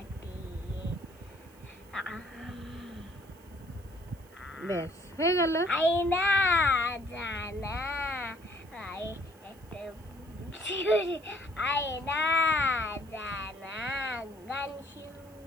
ব্যাস হয়ে গেল। আয়না জানা আয়না জানা গান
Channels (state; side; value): noise; right; hiss, 27 dB below the sound